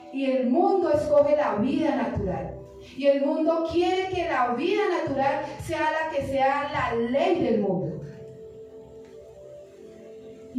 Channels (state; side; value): identical; both; correlation 1.00